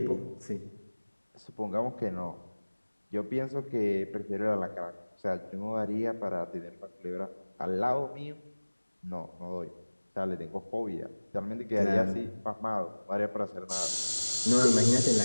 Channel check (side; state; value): both; inverted; correlation -1.00